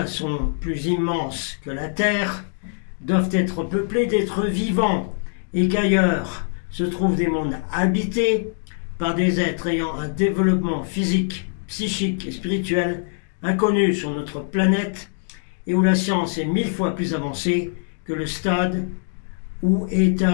sont plus immenses que la Terre, doivent être peuplés d'êtres vivants et qu'ailleurs se trouvent des mondes habités par des êtres ayant un développement physique, psychique et spirituel inconnu sur notre planète et où la science est 1000 fois plus avancée que le stade où est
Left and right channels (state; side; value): silent; right; digital silence